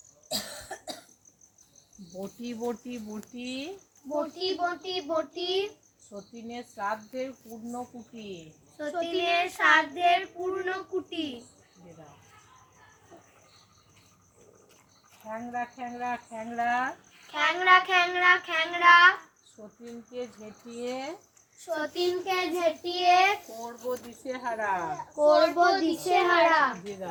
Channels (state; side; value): identical; both; correlation 1.00